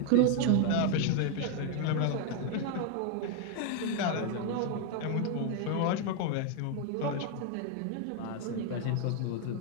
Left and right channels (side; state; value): both; different; correlation 0.00